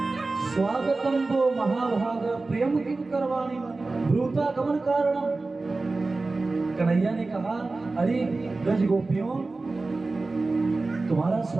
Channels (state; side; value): quieter; left; 3.5 dB